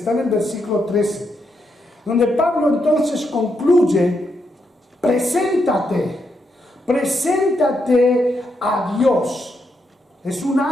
en el versículo 13, donde Pablo entonces concluye: preséntate a Dios. Es un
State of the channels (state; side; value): normal; both; correlation 0.81